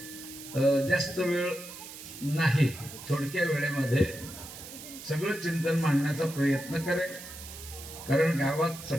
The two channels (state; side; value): noise; right; hiss, 13 dB below the sound